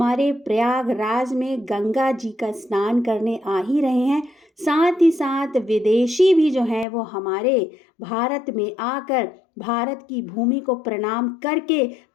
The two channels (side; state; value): right; drops out; at 6.9 s